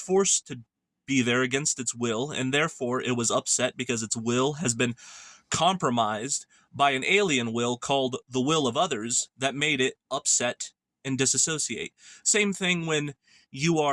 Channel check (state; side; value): identical; both; correlation 1.00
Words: to be there against its will, and therefore it was upset because its will has been compromised by an alien will called the will of others that made it upset and disassociate. Same thing when you